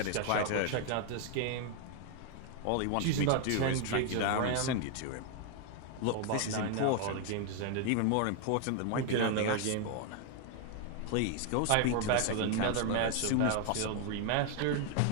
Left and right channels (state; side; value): different; both; correlation 0.00